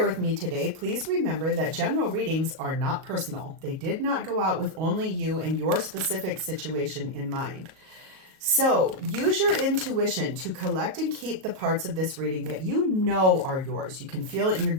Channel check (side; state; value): left; late; 38 ms